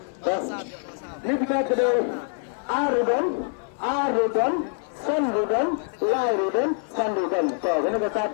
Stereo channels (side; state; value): right; silent; 55 dB below the other